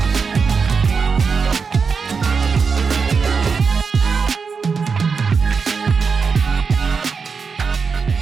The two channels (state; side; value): quieter; left; 5.4 dB